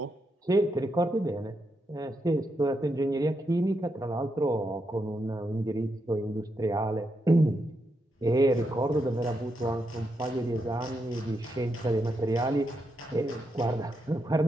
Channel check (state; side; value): normal; both; correlation 0.83